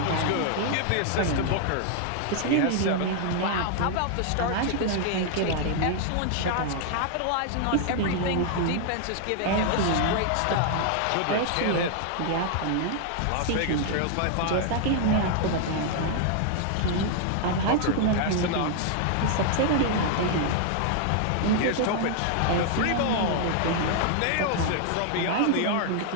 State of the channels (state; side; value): different; both; correlation 0.00